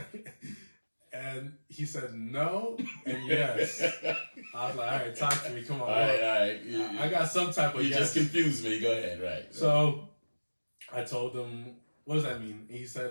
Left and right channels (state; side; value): inverted; both; correlation -1.00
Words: And he said no and yes. I was like, "All right, talk to me. Come on." All right. I got some type of You yes. just confused me. Go ahead. Right. So I told him, "What does that mean?" He